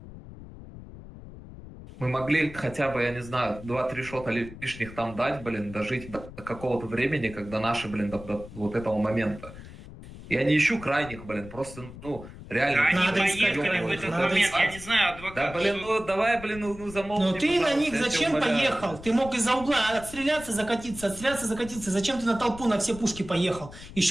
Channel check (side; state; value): left; noise; rumble, 15 dB below the sound